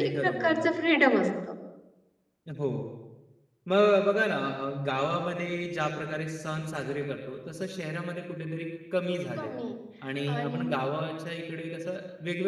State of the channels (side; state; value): both; identical; correlation 1.00